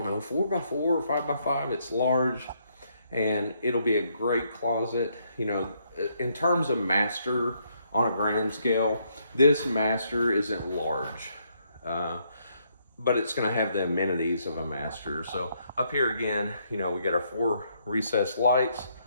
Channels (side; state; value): both; inverted; correlation -0.73